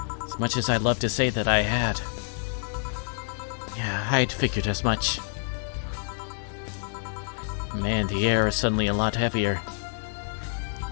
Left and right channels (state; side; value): silent; right; 60 dB below the other